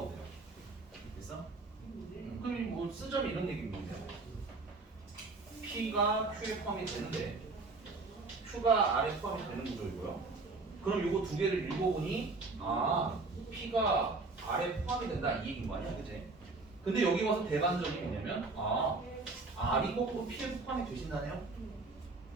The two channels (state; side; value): quieter; left; 3.7 dB